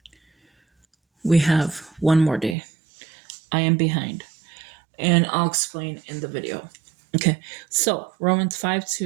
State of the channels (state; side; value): drops out; left; at 2.6 s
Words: we have 1 more day. I am behind, and I'll explain in the video. Okay, so Romans